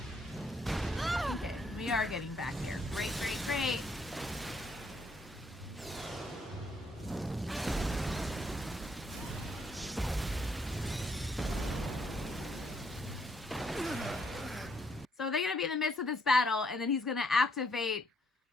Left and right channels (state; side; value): normal; both; correlation 0.71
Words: Okay, we are getting back here. Great, great, great. So they're gonna be in the midst of this battle, and then he's gonna activate